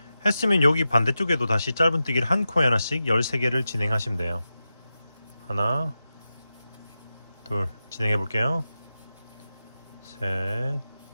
했으면 여기 반대쪽에도 다시 짧은뜨기를 한 코에 하나씩 13개를 진행하시면 돼요. 하나 둘 진행해 볼게요. 셋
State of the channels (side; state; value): both; inverted; correlation -0.92